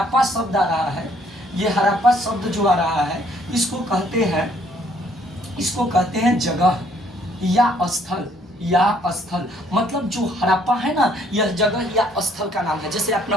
शब्द आ रहा है, ये हड़प्पा शब्द जो आ रहा है, इसको कहते हैं जगह या स्थल। मतलब जो हड़प्पा है ना, यह जगह या स्थल का नाम है। जैसे अपना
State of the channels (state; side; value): normal; both; correlation 0.64